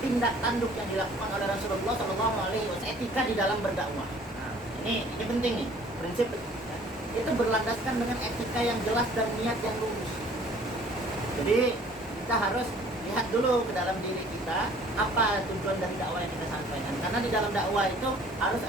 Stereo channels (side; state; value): both; normal; correlation 0.54